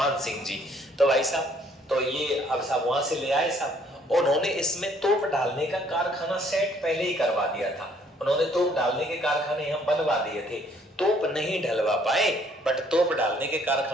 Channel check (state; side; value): normal; both; correlation 0.63